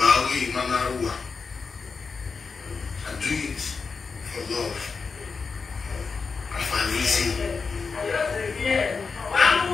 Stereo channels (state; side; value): quieter; right; 5.0 dB